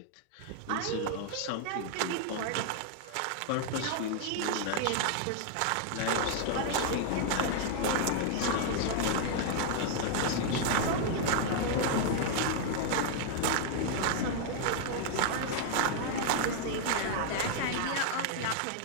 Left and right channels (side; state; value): both; different; correlation 0.00